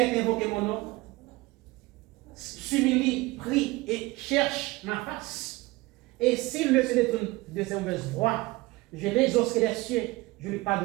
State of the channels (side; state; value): left; quieter; 21.5 dB